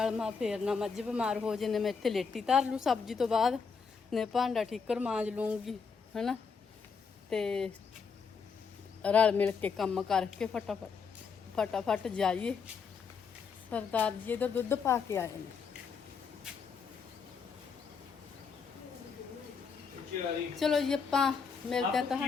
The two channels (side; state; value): right; quieter; 5.7 dB